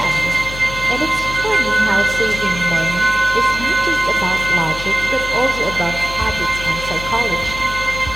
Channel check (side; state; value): left; noise; hum, 11 dB below the sound